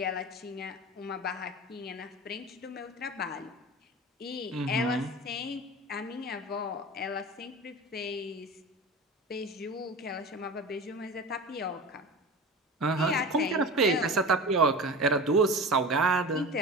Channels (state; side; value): normal; both; correlation 0.33